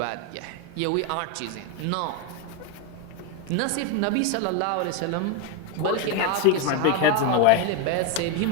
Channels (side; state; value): both; different; correlation 0.01